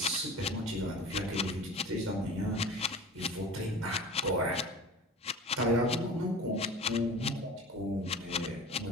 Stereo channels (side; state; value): both; normal; correlation 0.38